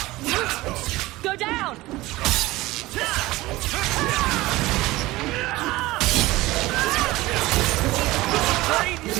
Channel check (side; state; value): left; quieter; 19.0 dB